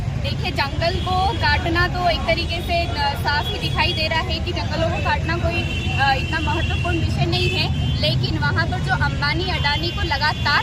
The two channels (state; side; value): identical; both; correlation 1.00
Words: देखिए, जंगल को काटना तो एक तरीके से साफ ही दिखाई दे रहा है कि जंगलों को काटना कोई इतना महत्वपूर्ण विषय नहीं है, लेकिन वहाँ पर जो अंबानी अडानी को